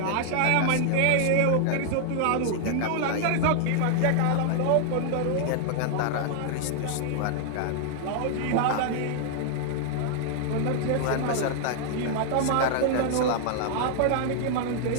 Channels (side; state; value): both; different; correlation 0.00